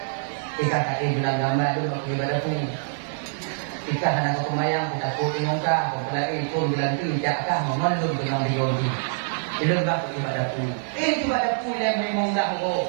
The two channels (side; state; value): left; silent; digital silence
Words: Ika kaki bilang gambar dulu waktu ibadah pun. Ika hana kumayang kita puting ka, pelai pun bilang tu jakah memelum dengan diodi. Itu bak ibadah pun. Ibadah pun yang memang dah ko.